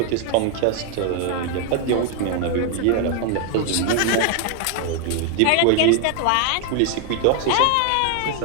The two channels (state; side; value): different; both; correlation 0.00